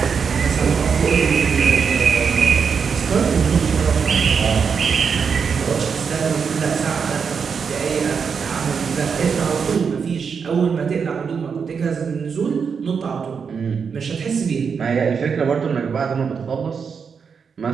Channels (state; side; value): quieter; left; 6.1 dB